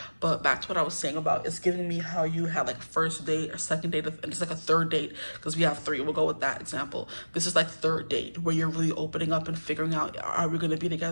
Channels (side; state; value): both; inverted; correlation -1.00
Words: But back to what I was saying about, it's giving me how you had like first date or second date, and it's like a third date, because we have three. We'll go with that example. This is like third date, where you're really opening up and figuring out, are we going to be